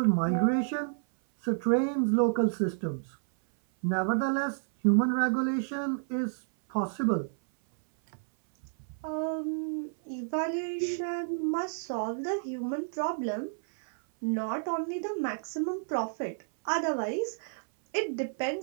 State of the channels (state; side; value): silent; left; 58 dB below the other